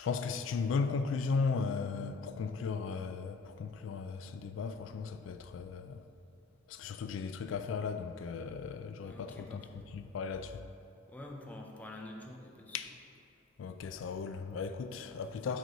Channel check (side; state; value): right; quieter; 4.7 dB